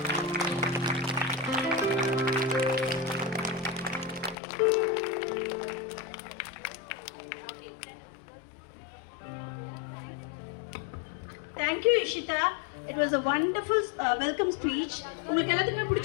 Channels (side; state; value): right; drops out; at 4.4 s